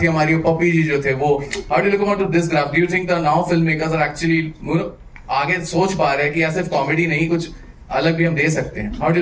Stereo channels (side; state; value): both; identical; correlation 1.00